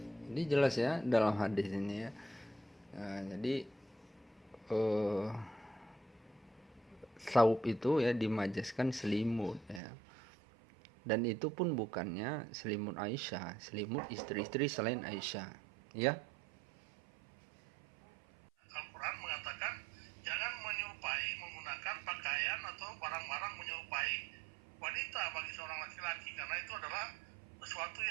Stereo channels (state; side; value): drops out; left; at 9.8 s